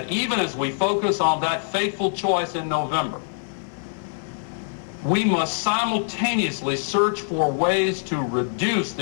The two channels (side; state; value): right; silent; 57 dB below the other